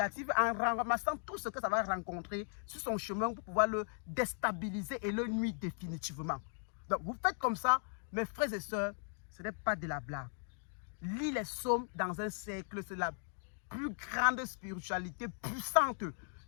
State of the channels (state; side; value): silent; right; 53 dB below the other